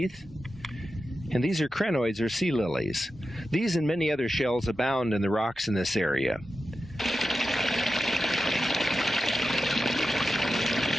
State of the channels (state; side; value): normal; both; correlation 0.91